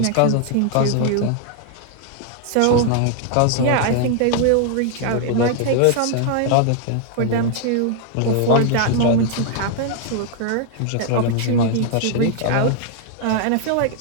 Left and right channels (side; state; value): both; different; correlation 0.00